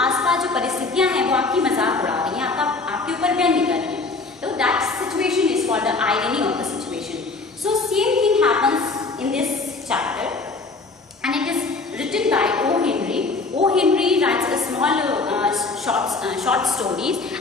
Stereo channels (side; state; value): right; quieter; 3.9 dB